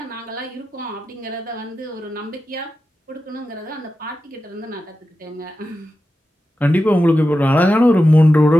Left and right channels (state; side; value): normal; both; correlation 0.92